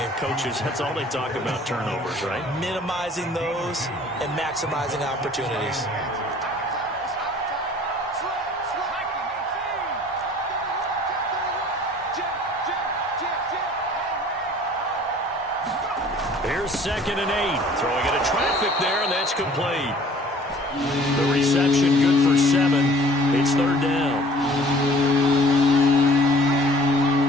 Coaches, that's all they talk about, turnovers, right? Minimizing those and maximizing opportunities. Here's 2nd and 8. Throwing into traffic there, and that's complete. The reception good for 7. It's 3rd down.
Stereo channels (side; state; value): both; normal; correlation 0.52